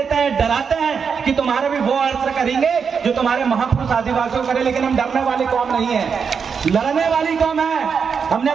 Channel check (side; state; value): left; quieter; 6.2 dB